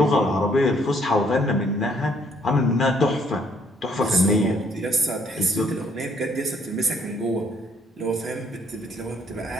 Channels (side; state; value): both; normal; correlation 0.66